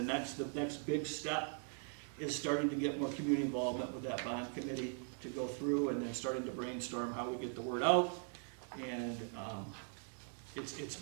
next big step is starting to get more community involvement with that bond committee to go through, and then starting to brainstorm how we get the word out. And it's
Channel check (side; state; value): left; silent; 51 dB below the other